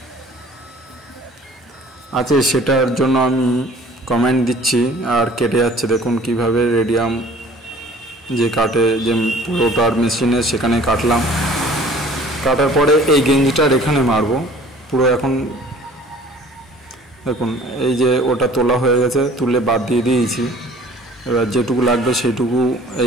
আছে সেটার জন্য আমি কমেন্ট দিচ্ছি আর কেটে যাচ্ছে। দেখুন কিভাবে রেডিয়াম যে কাটে, যে পুরোটার মেশিনে সেখানে কাটলাম। কাটার পরে এই গেঞ্জিটার এখানে মারবো পুরো। এখন দেখুন এই যে ওটা তোলা হয়ে গেছে, তুলে বাদ দিয়ে দিয়েছি। এবার যেটুকু লাগবে সেইটুকু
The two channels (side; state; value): both; normal; correlation 0.50